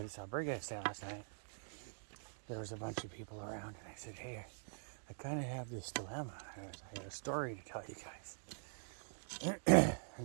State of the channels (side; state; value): left; silent; digital silence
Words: this albergue I stayed last night, there was a bunch of people around, and I said, hey, I kind of have this dilemma. I got a story to tell you guys.